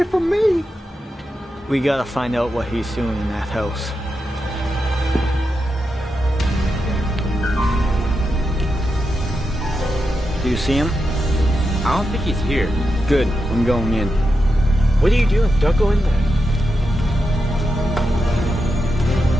from me. We gotta find out what he's doing in that house. Do you see him? I don't think he's here. Good, I'm going in. What are you doing? Don't go in there.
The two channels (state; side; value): normal; both; correlation 0.87